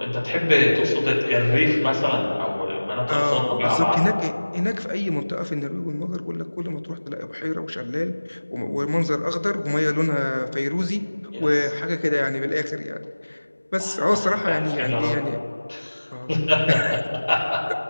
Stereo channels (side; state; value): both; inverted; correlation -1.00